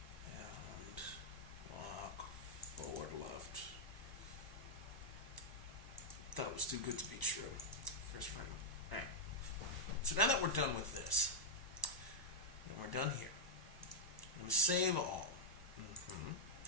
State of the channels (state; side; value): normal; both; correlation -0.05